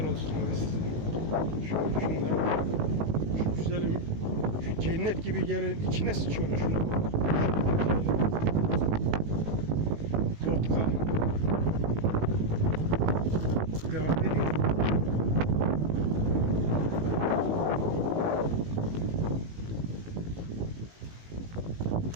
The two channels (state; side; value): late; left; 19 ms